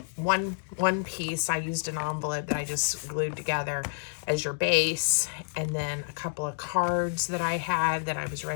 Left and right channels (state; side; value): silent; right; digital silence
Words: one piece. I used an envelope that I just glued together as your base, and then a couple of cards that I had that I was